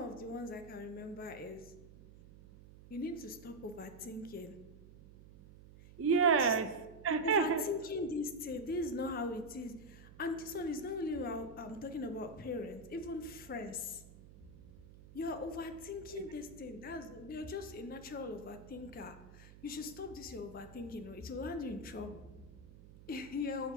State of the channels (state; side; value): noise; right; hum, 18 dB below the sound